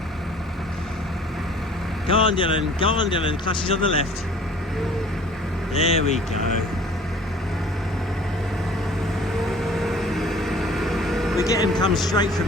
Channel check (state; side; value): normal; both; correlation 0.51